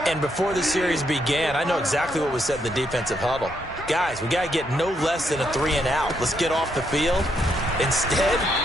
And before the series began, I know exactly what was said in the defensive huddle. Guys, we got to get no less than a 3-and-out. Let's get off the field. Instead,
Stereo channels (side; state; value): both; normal; correlation 0.76